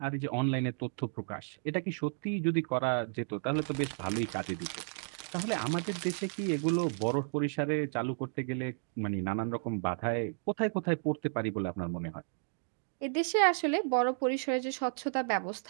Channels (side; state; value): left; silent; digital silence